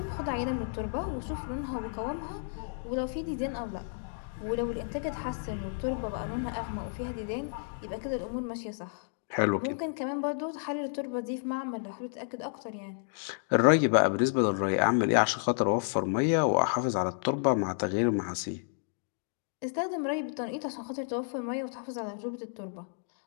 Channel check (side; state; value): right; silent; digital silence